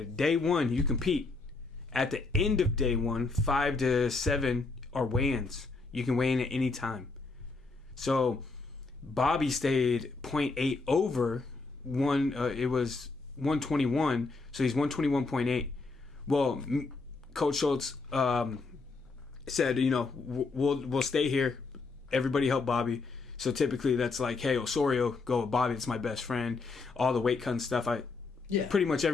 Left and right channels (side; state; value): right; quieter; 3.9 dB